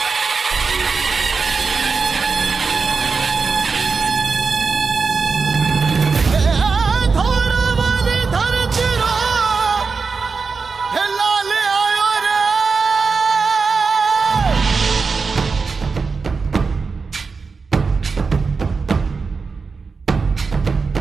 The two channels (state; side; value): quieter; left; 4.8 dB